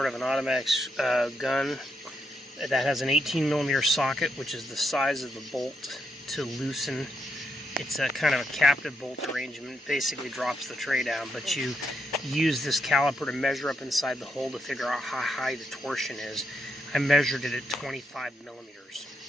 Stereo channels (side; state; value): both; normal; correlation 0.80